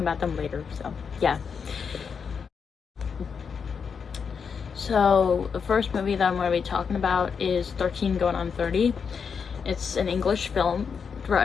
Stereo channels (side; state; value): right; quieter; 6.2 dB